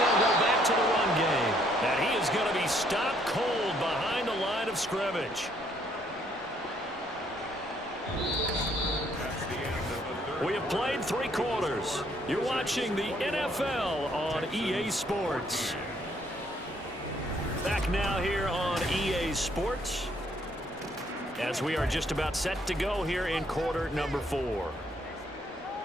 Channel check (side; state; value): both; normal; correlation 0.68